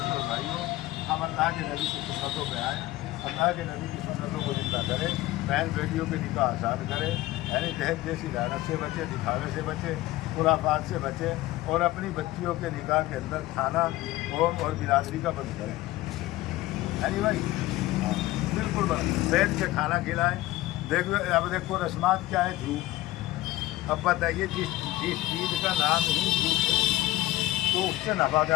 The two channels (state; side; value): quieter; right; 17.1 dB